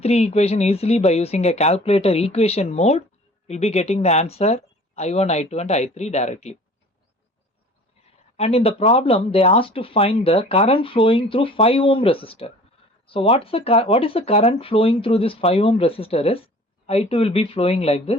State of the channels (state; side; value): normal; both; correlation 0.47